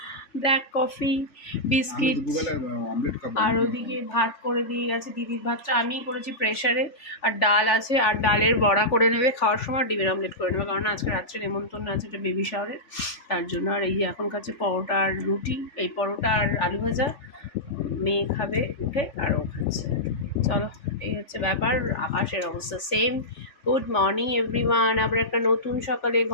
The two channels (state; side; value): late; right; 3.4 ms